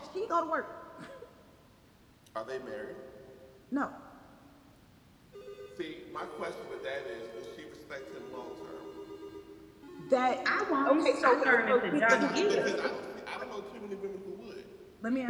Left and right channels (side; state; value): both; identical; correlation 1.00